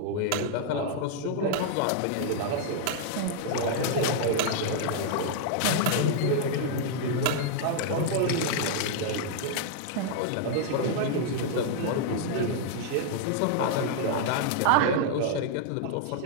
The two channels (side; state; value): both; different; correlation -0.01